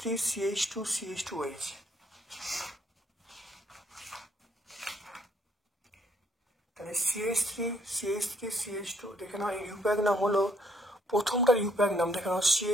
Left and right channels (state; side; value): normal; both; correlation 0.68